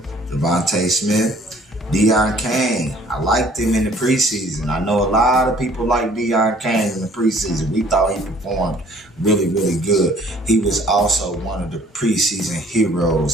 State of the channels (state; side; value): normal; both; correlation 0.56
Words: Devontae Smith, Deion Kane. I liked him in the preseason. I know a lot of people like Deion Kane in the preseason. We thought he performed really good. He was also one of the preseason